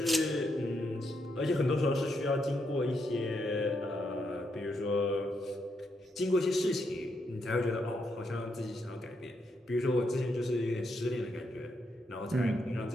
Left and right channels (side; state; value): both; normal; correlation 0.80